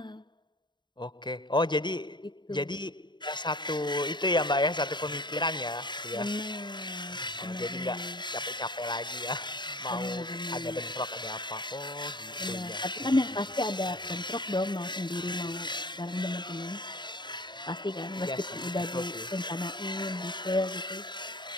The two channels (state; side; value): late; right; 0.22 ms